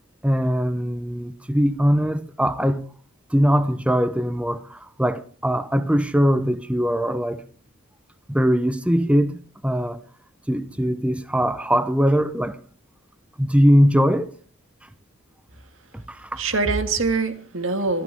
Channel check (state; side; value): normal; both; correlation 0.88